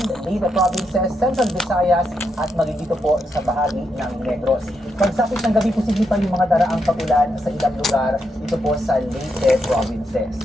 Leyte Provinces, Central Visayas at magigito po sa bahagi ng Negros. Pagsapit ng gabi, posible pa yung mga daraang pagulan sa ilang lugar dito po sa Leyte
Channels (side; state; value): both; normal; correlation 0.81